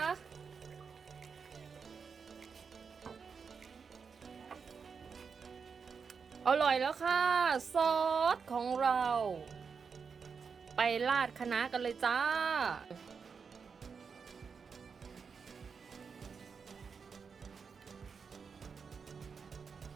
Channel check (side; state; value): left; quieter; 5.8 dB